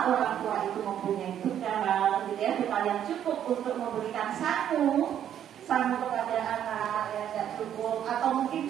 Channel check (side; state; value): left; quieter; 10.0 dB